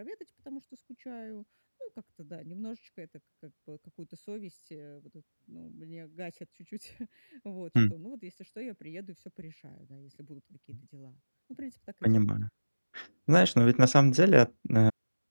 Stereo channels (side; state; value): both; inverted; correlation -1.00